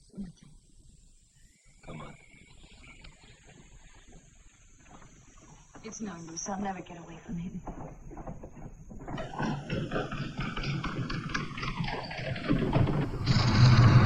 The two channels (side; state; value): both; identical; correlation 1.00